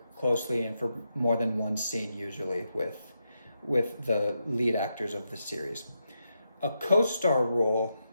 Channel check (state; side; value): inverted; both; correlation -0.84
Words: closely and for more than one scene, usually with the lead actors of the series. A co-star role